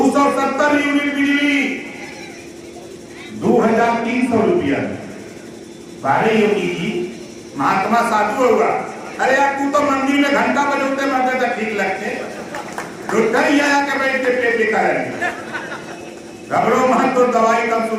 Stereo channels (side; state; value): both; identical; correlation 1.00